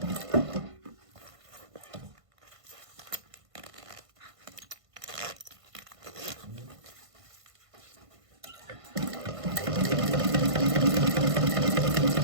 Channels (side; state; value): left; late; 1.5 ms